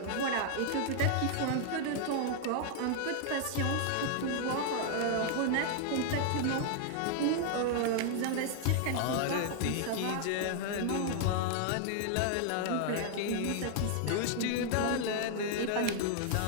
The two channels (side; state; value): both; different; correlation 0.00